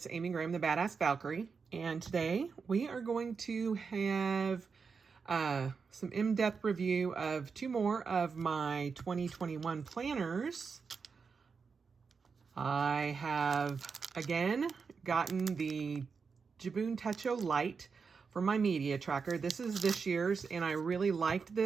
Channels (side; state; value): left; quieter; 5.4 dB